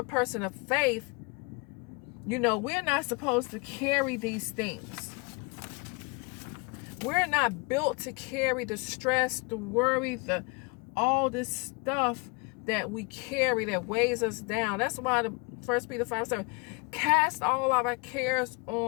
person of faith, we're not supposed to carry these things. We're not built to carry the stress, the worry, all this stuff that we carry that weighs us down. That's why the 1 Peter 5:7, cast all of our cares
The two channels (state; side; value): quieter; right; 30.6 dB